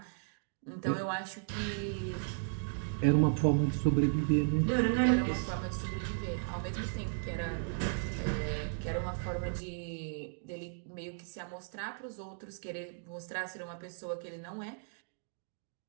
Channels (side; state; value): left; silent; digital silence